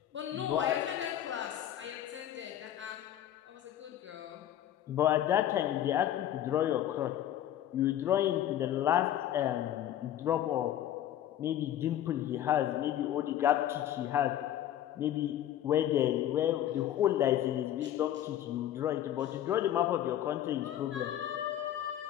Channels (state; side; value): quieter; right; 11.6 dB